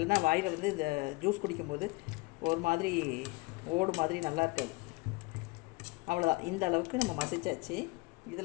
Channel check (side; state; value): right; quieter; 24.7 dB